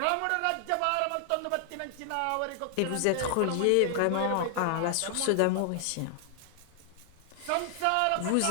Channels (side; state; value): both; different; correlation 0.00